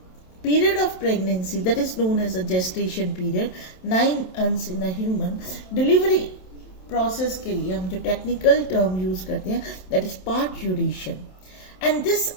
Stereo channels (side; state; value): right; late; 27 ms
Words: of pregnancy, that is known as a gestation period, 9 months in a human. Delivery process के लिए हम जो technical term use करते हैं that is parturition, and this